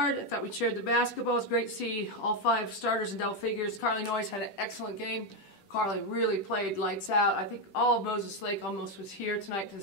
I thought we shared the basketball. It was great to see all 5 starters in double figures. Carly Noyes had an excellent game. Carly really played lights out. I think all of Moses Lake almost was here tonight to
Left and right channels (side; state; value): right; late; 10 ms